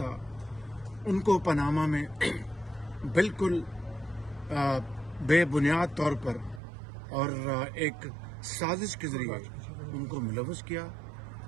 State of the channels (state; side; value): drops out; left; at 6.6 s